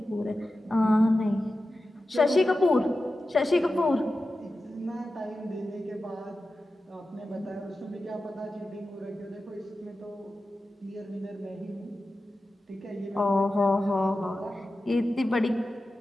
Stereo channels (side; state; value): both; normal; correlation 0.93